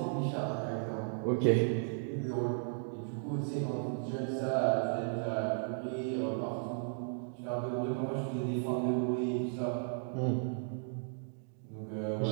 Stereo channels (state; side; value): silent; left; digital silence